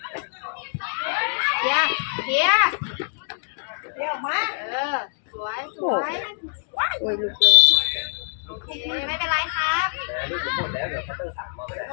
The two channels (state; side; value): silent; right; digital silence